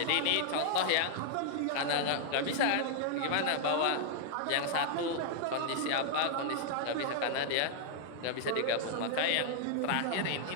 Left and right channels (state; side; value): different; both; correlation -0.01